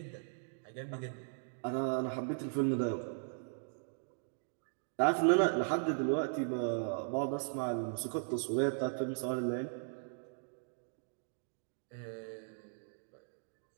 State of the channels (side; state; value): left; silent; digital silence